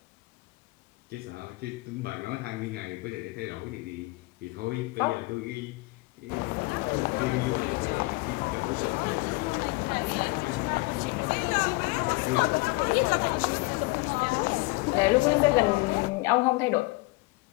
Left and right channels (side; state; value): right; quieter; 24.0 dB